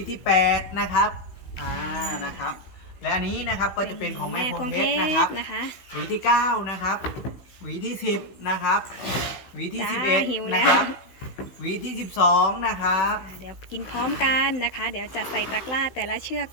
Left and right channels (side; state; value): right; late; 16 ms